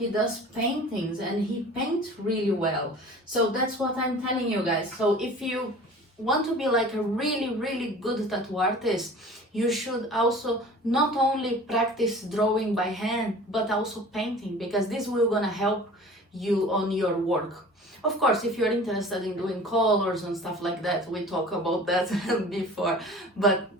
does paintings and he paints really well. So that's what I'm telling you guys. So if you want to be like a really good tattoo artist, you should also not only practice drawing by hand but also painting, because this will gonna help you on your work. Of course, if you're interested in doing colors and stuff like that, we talked about that before, but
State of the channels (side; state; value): both; normal; correlation 0.43